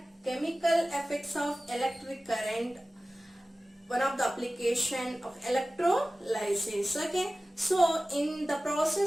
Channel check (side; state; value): both; normal; correlation 0.97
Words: chemical effects of electric current, one of the application of electrolysis. Okay, so in the